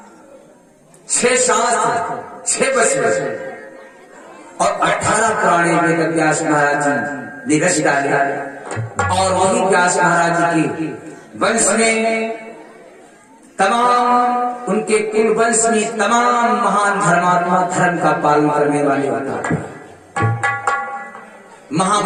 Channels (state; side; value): identical; both; correlation 1.00